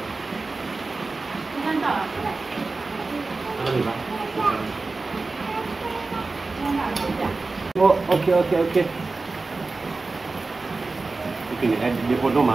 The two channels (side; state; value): left; quieter; 3.7 dB